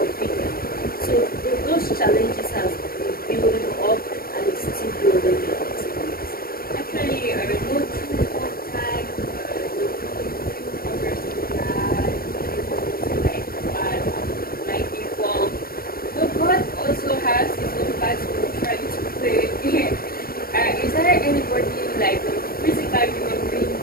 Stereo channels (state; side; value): late; right; 0.43 ms